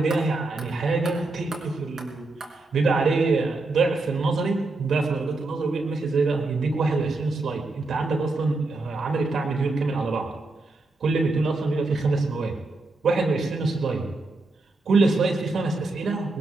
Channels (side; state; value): left; quieter; 3.3 dB